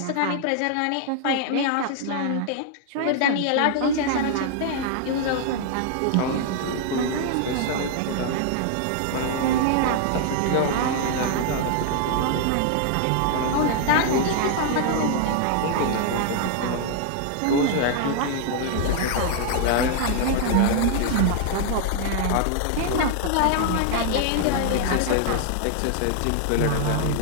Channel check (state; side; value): different; both; correlation 0.00